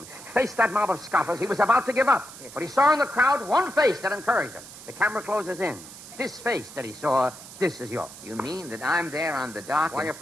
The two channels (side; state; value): right; noise; hiss, 16 dB below the sound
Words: faced that mob of scoffers, he was about to give up. But he saw in the crowd one face that encouraged him. The camera closes in. This face that he saw, this is yours. You mean that I'm there on the dock? Why, if